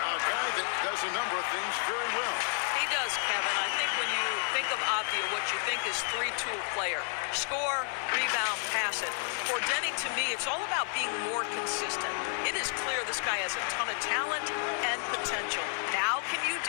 guy that does a number of things very well. He does, Kevin. I think when you think of Avdia, what you think is three-tool player. Score, rebound, pass it. For Denny, to me, it's all about being more consistent. It is clear this guy has a ton of talent and potential. Now can you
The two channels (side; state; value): right; silent; 55 dB below the other